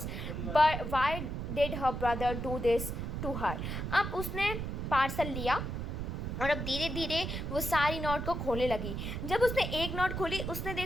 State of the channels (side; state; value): right; noise; rumble, 4 dB below the sound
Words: but why did her brother do this to her? अब उसने पार्सल लिया और अब धीरे धीरे वो सारी नॉट को खोलने लगी। जब उसने एक नॉट खोली, उसने